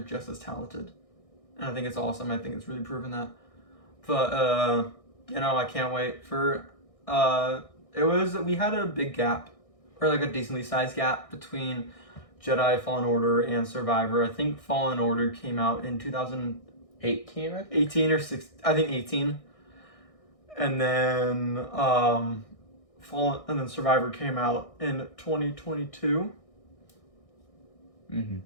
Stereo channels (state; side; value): late; right; 1.6 ms